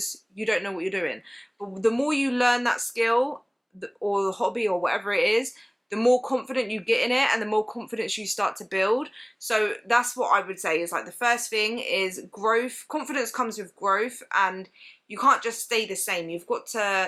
you don't know what you're doing. But the more you learn that skill or the hobby or whatever it is, the more confident you get in it and the more confidence you start to build. So that's what I would say is, like, the first thing is growth. Confidence comes with growth, and you can't just stay the same. You've got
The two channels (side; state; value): both; identical; correlation 1.00